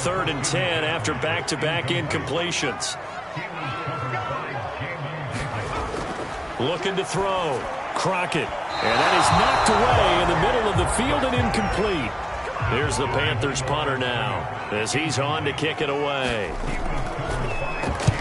and 10 after back-to-back incompletions. Looking to throw. Crockett. And that is knocked away in the middle of the field and incomplete. Here's the Panthers punter now as he's on to kick it away.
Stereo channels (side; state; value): both; identical; correlation 1.00